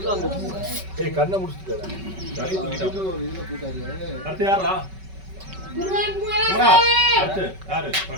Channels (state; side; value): late; left; 5.3 ms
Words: கண்ணை முடிச்சுட்டாரு. அடுத்து யாரா? யாரு